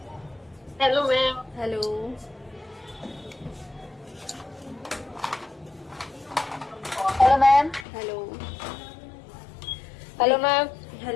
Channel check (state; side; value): drops out; right; at 7.9 s